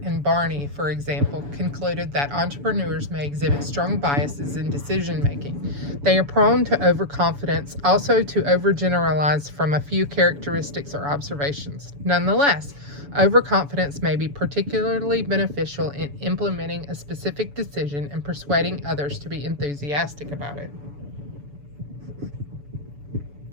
and Barney, for example, concluded that entrepreneurs may exhibit strong biases in decision making. They are prone to overconfidence, also to overgeneralize from a few characteristics or observations. Nonetheless, overconfidence may be particularly beneficial in implementing a specific decision and persuading others to be enthusiastic about it.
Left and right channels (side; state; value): left; late; 7.0 ms